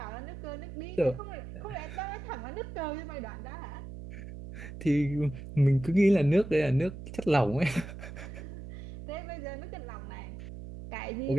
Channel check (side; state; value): right; noise; hum, 11 dB below the sound